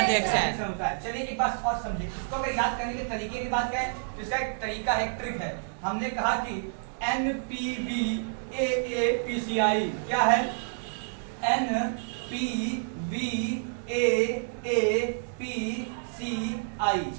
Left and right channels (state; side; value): silent; left; digital silence